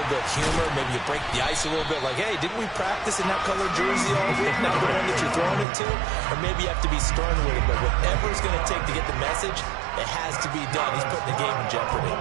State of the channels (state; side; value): drops out; left; at 5.7 s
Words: bit of humor? Maybe you break the ice a little bit like, hey, didn't we practice in that colored jersey all week, not the one that you're throwing it to? Or maybe you have to be stern with it. But whatever it's going to take to get the message, it has to be done. He's putting the game in jeopardy.